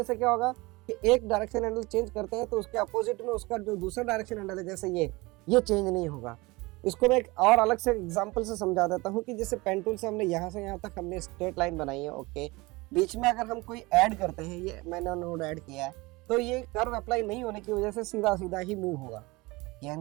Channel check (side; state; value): left; quieter; 23.2 dB